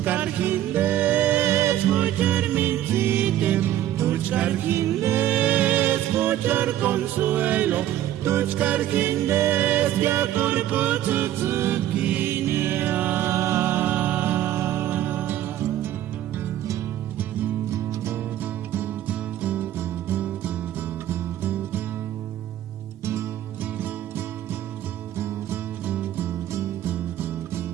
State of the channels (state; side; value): quieter; left; 12.6 dB